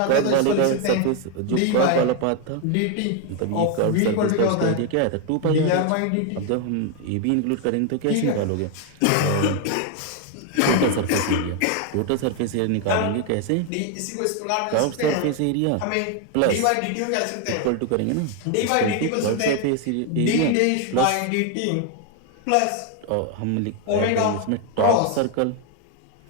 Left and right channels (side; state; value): both; different; correlation 0.01